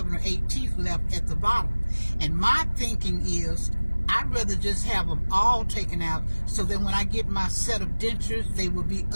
or 8 teeth left at the bottom. And my thinking is, I'd rather just have them all taken out, so that when I get my set of dentures, they will be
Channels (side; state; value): both; inverted; correlation -1.00